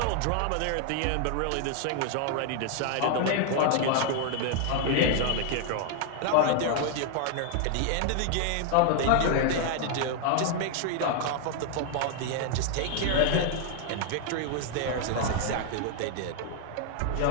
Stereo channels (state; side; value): different; both; correlation 0.00